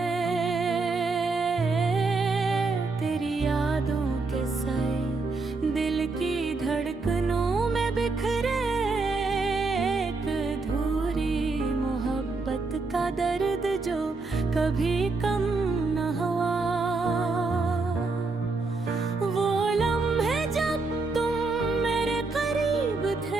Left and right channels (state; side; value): quieter; left; 3.8 dB